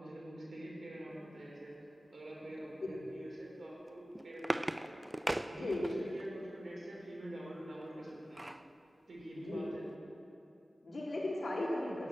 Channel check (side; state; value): both; normal; correlation 0.96